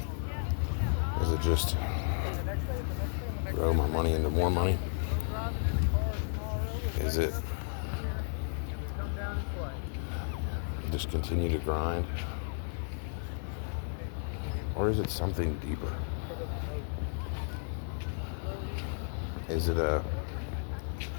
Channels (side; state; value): right; silent; digital silence